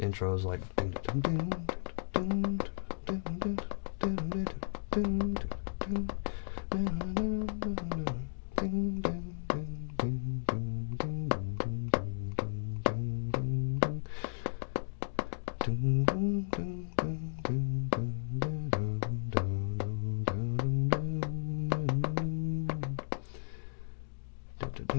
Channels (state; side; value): silent; right; digital silence